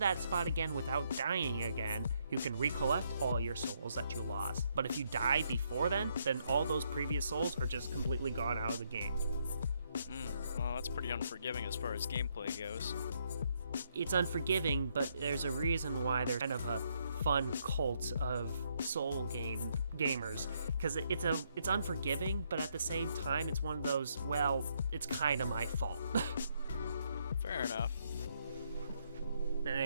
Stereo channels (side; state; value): both; inverted; correlation -0.74